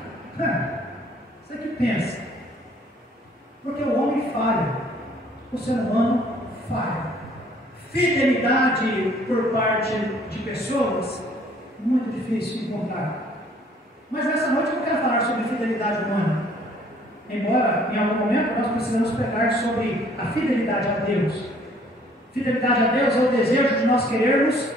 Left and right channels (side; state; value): both; normal; correlation 0.59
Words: Você que pensa. Porque o homem falha, o ser humano falha. Fidelidade por parte de pessoas, muito difícil de encontrar. Mas nessa noite eu não quero falar sobre fidelidade humana. Embora em algum momento nós precisamos pregar sobre a fidelidade a Deus. Fidelidade a Deus é o desejo de nós querermos